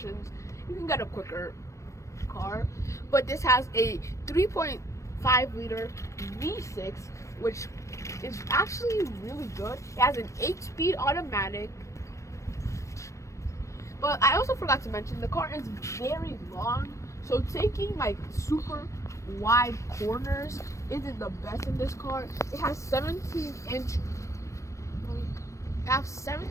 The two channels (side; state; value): right; late; 0.15 ms